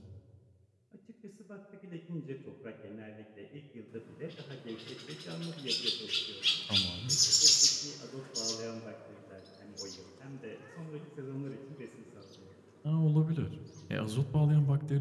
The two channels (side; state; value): both; identical; correlation 1.00